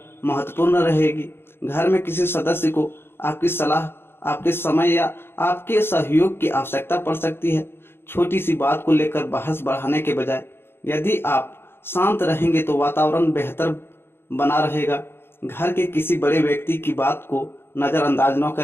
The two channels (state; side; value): late; right; 0.11 ms